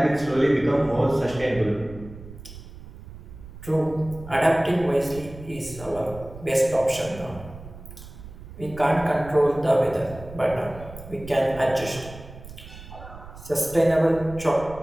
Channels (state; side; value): noise; right; rumble, 15 dB below the sound